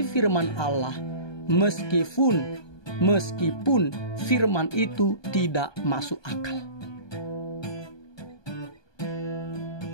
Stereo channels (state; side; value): late; right; 1.2 ms